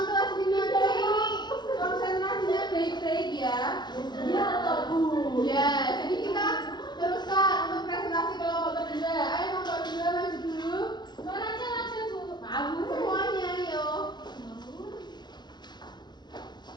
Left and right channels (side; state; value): right; late; 0.21 ms